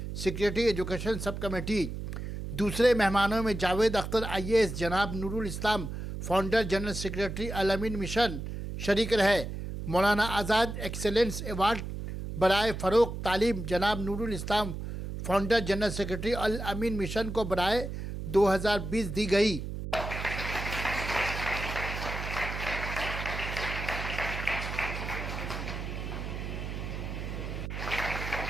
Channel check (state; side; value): noise; right; hum, 6 dB below the sound